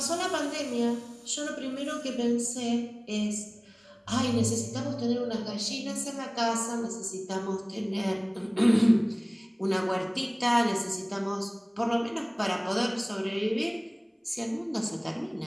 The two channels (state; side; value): identical; both; correlation 1.00